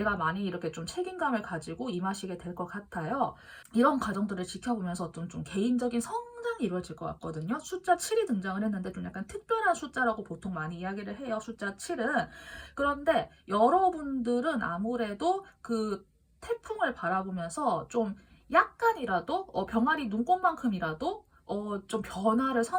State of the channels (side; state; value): both; identical; correlation 1.00